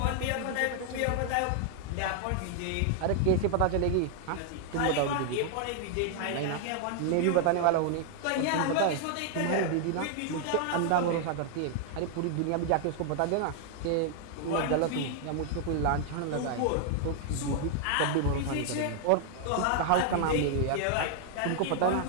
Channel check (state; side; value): different; both; correlation 0.00